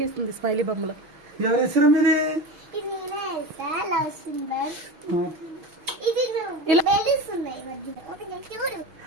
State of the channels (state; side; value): late; left; 6.2 ms